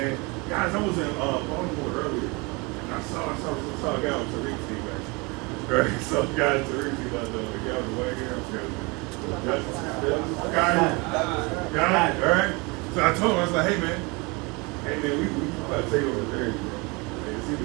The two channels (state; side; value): quieter; left; 27.5 dB